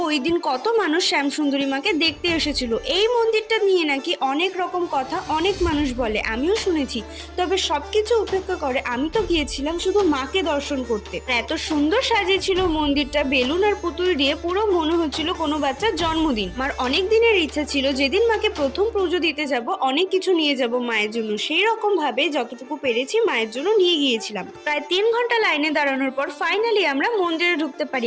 ওই দিন কত মানুষ শ্যামসুন্দরী মাকে দেখতে এসেছিল। এই মন্দিরটা নিয়ে নাকি অনেক রকম কথা অনেক মানুষ বলে, আমিও শুনেছি। তবে সবকিছু উপেক্ষা করে আমি তো গিয়েছিলাম শুধু মাকে দর্শন করতে। এত সুন্দর সাজিয়েছিল মন্দিরটা, বেলুন আর পুতুল দিয়ে পুরো মনে হচ্ছিল কোনো বাচ্চার জন্মদিন। মার অনেক দিনের ইচ্ছা ছিল যেদিন মাকে প্রথম পুজো দিতে যাব অনেক কিছু নিয়ে যাব মায়ের জন্য। সেই রকম ভাবে যতটুকু পেরেছি মায়ের জন্য নিয়ে গিয়েছিলাম। প্রায় 3 ঘন্টা লাইনে দাঁড়ানোর পর ফাইনালি আমরা মন্দিরে ঢুকতে পারি।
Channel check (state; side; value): identical; both; correlation 1.00